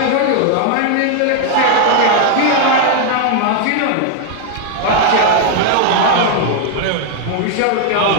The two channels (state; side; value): different; both; correlation 0.00